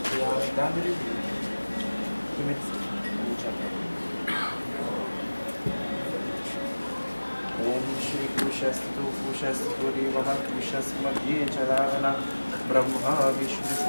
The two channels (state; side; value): inverted; both; correlation -1.00